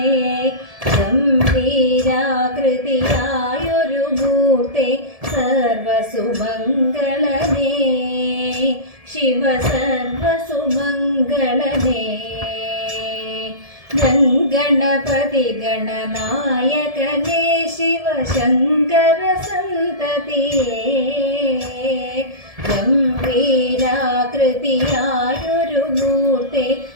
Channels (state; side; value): late; left; 1.7 ms